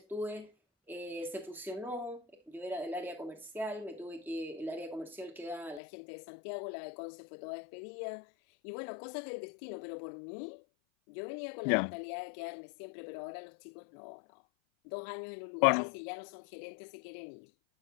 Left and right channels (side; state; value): right; drops out; at 5.8 s